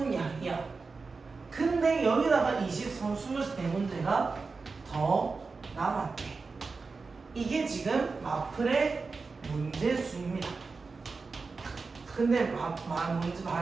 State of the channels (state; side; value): quieter; left; 4.3 dB